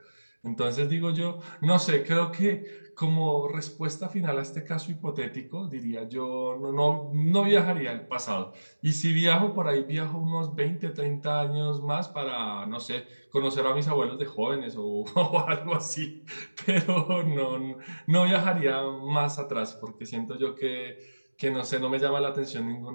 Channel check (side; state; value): both; inverted; correlation -1.00